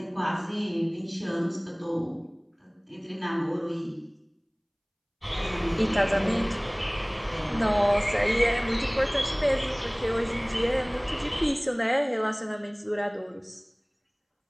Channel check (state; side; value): identical; both; correlation 1.00